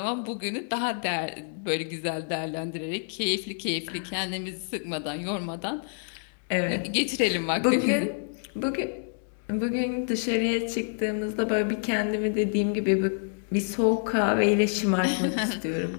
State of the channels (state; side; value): silent; right; digital silence